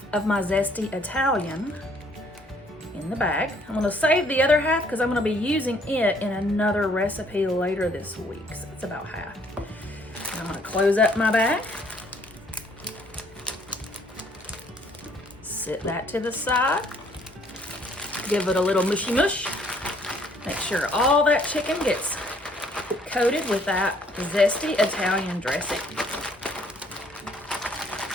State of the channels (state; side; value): normal; both; correlation 0.63